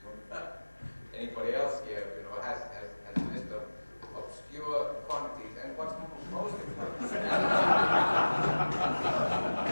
Anybody else here, has a list of obscure quantities, and what's most important?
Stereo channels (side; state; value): both; inverted; correlation -1.00